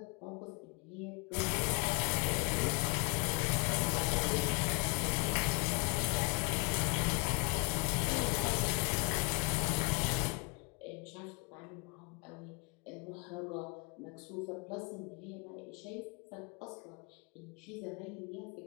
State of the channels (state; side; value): quieter; right; 30.4 dB